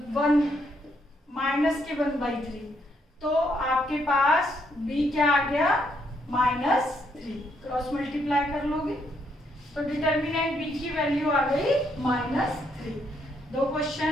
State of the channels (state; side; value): normal; both; correlation 0.74